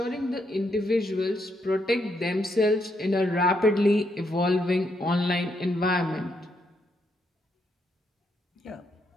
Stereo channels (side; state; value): both; normal; correlation 0.78